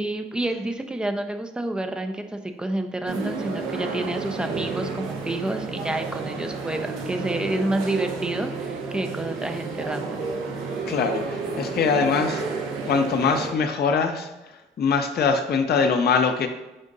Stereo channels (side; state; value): both; normal; correlation 0.52